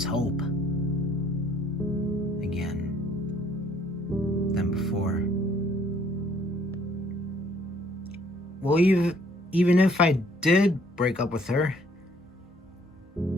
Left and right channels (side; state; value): both; normal; correlation 0.62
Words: hope again than before. Well, even if I did break up with her,